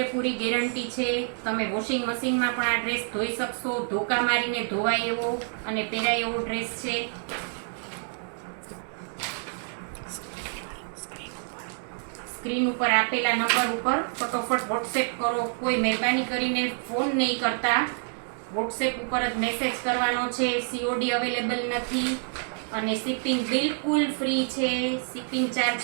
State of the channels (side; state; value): left; silent; 60 dB below the other